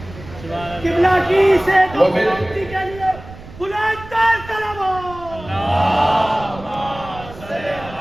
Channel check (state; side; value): noise; right; rumble, 16 dB below the sound